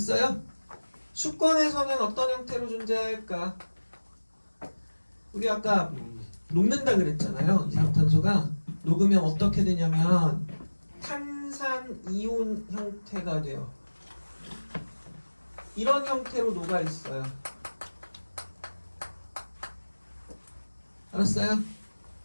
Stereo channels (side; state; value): both; inverted; correlation -1.00